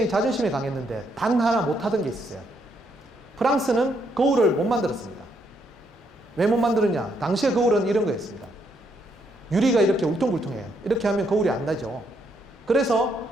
자존심이 강했는데 단 하나 못하던 게 있었어요. 프랑스는 거울을 못 만들었습니다. 왜 못 만들었냐? 당시의 거울은 이런 거였습니다. 유리가 이렇게 울퉁불퉁해요. 이렇게 하면 거울이 안 나죠. 그래서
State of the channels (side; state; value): both; normal; correlation 0.75